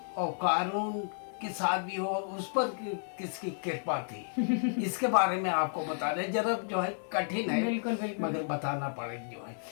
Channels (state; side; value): silent; right; 56 dB below the other